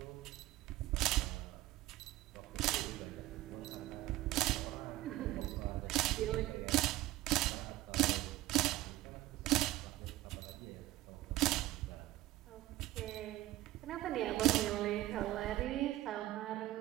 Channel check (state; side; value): quieter; left; 16.5 dB